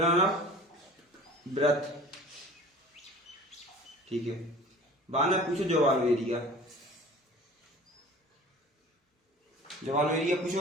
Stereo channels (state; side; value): normal; both; correlation 0.43